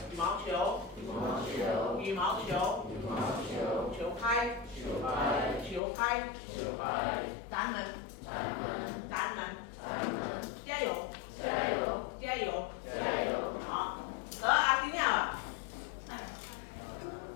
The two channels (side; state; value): right; drops out; at 5.8 s